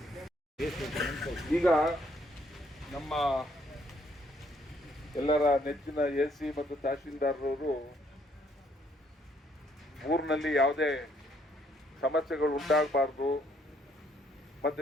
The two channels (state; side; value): normal; both; correlation 0.68